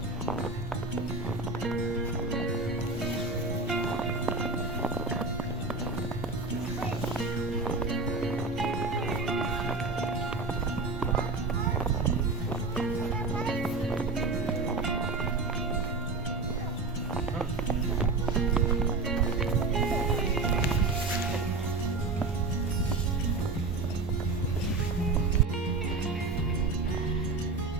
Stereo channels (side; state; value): left; quieter; 3.6 dB